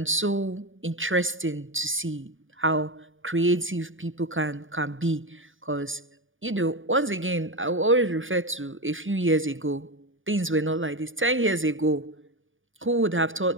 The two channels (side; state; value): left; late; 0.57 ms